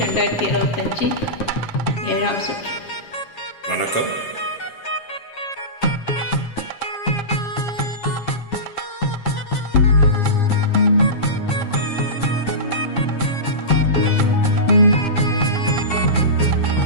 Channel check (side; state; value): right; late; 7.4 ms